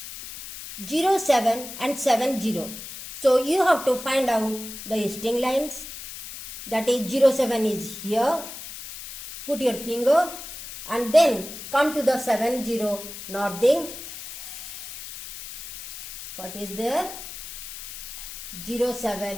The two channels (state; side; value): noise; left; hiss, 11 dB below the sound